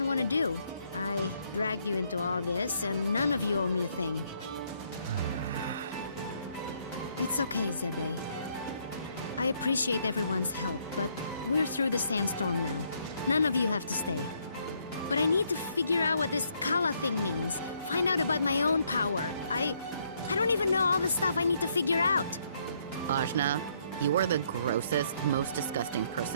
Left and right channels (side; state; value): both; inverted; correlation -0.70